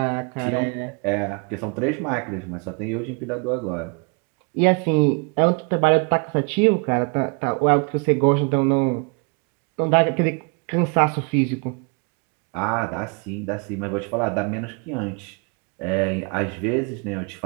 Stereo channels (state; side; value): quieter; left; 34.3 dB